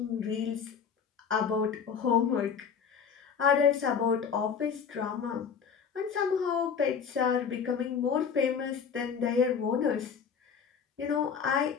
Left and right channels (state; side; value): quieter; right; 6.7 dB